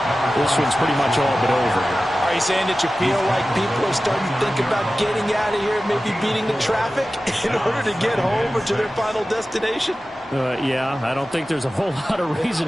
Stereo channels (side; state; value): both; normal; correlation 0.95